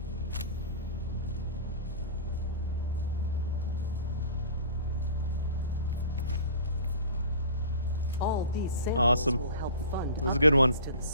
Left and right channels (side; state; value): both; inverted; correlation -0.39